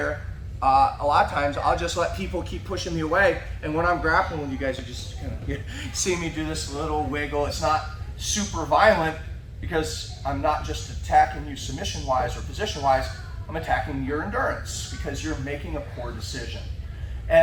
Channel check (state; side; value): identical; both; correlation 1.00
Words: a lot of times I'll just let people keep pushing me away, and when I'm grappling, you guys are just kind of see me do this little wiggle. It's not super violent because I'm not just attacking you submission-wise or position-wise, I'm attacking your endurance because you're making a poor decision.